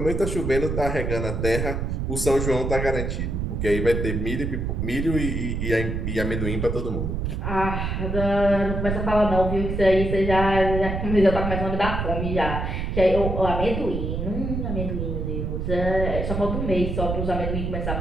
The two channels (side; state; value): right; noise; rumble, 2 dB below the sound